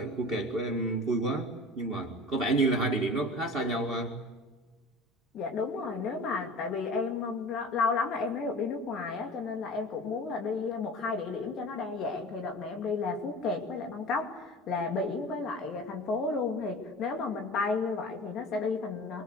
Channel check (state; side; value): normal; both; correlation 0.38